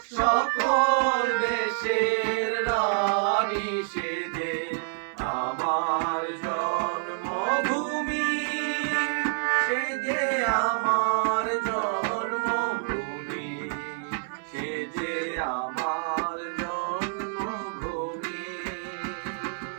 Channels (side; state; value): left; silent; 58 dB below the other